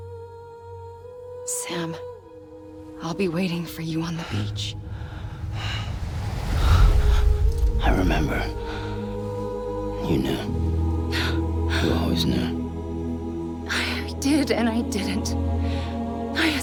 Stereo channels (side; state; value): both; identical; correlation 1.00